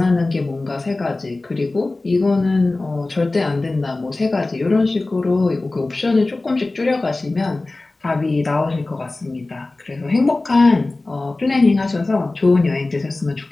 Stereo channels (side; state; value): right; quieter; 3.1 dB